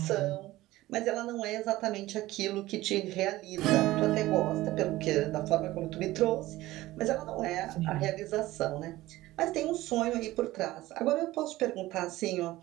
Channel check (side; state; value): left; quieter; 17.2 dB